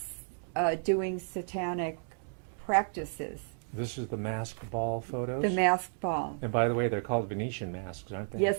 doing satanic practices. This is the masked ball photos? The masked ball. And by the way, they're called Venetian masks, aren't they?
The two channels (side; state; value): left; silent; digital silence